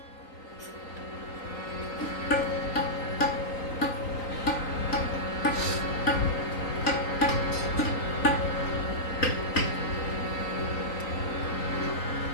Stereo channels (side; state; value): right; late; 3.9 ms